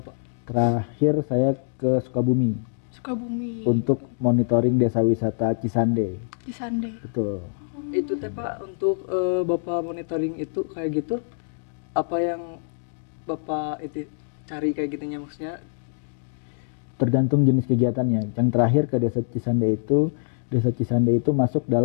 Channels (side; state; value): right; silent; digital silence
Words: Terakhir saya ke Sukabumi Sukabumi. untuk monitoring desa wisata Cisande. Di Sande. Betul. Itu teh Pak, untuk Bapak monitoring itu kayak gitu, apa yang Bapak itu cari kayak gitunya maksudnya? Tergantung jenis kegiatannya. Yang terakhir ke Desa Cisande itu masuk